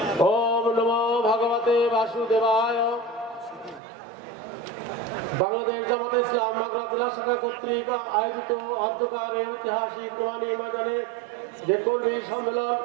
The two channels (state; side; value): drops out; left; at 3.8 s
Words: ওম নমো ভগবতে বাসুদেবায়। বাংলাদেশ জামাতে ইসলাম মাগুরা জেলা শাখা কর্তৃক আয়োজিত অধ্যকার ঐতিহাসিক নোমানী ময়দানে যে কর্মী সম্মেলন,